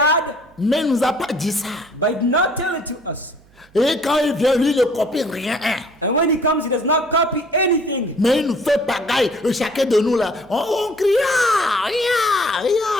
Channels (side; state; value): right; noise; hum, 29 dB below the sound